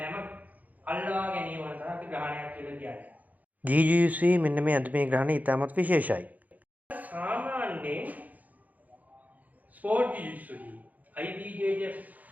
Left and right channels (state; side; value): late; left; 0.079 ms